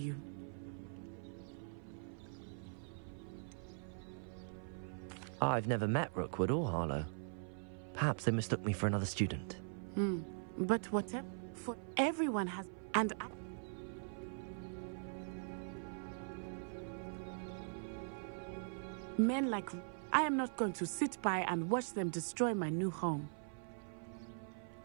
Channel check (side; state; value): left; silent; 50 dB below the other